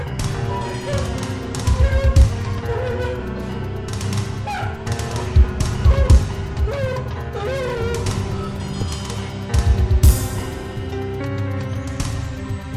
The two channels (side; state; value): both; identical; correlation 1.00